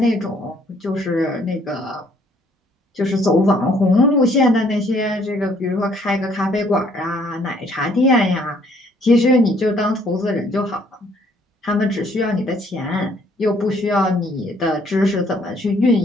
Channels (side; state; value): both; normal; correlation 0.63